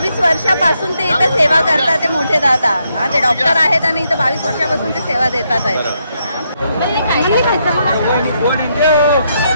वर्षापासून ते इथं सेवा करतात. ते मोठे दादा, हा, ते डॉक्टर आहेत आणि इथं 22 वर्षापासून ते सेवा देतात आहेत.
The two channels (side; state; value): both; inverted; correlation -0.78